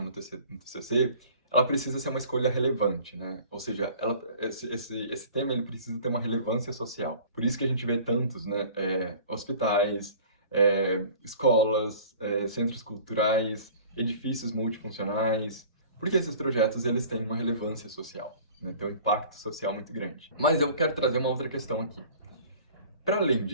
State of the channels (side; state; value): both; inverted; correlation -0.47